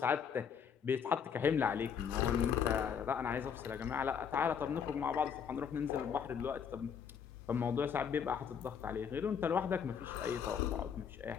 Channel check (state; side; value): quieter; right; 7.3 dB